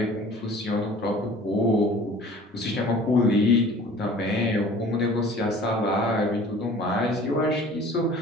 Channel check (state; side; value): normal; both; correlation 0.47